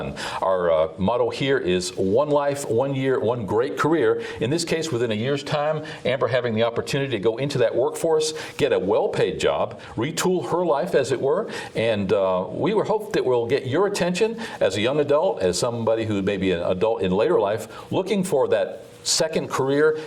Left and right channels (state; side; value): identical; both; correlation 1.00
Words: Our motto here is one life, 1 year, one great career. In this case, within a year's time, Amber having the opportunity to go into that workforce, get a well-paid job, retool her life, as it were, and we hope that we'll get your attention as a young adult, as somebody who may be an adult in later life, looking for that second career.